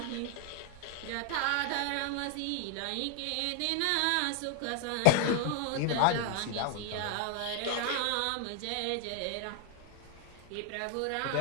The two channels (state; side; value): different; both; correlation 0.00